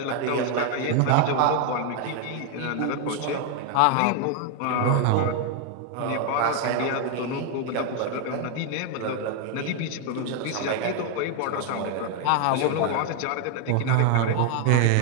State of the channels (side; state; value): both; different; correlation 0.01